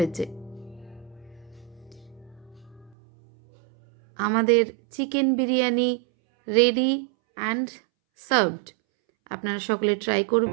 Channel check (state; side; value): drops out; left; at 3.0 s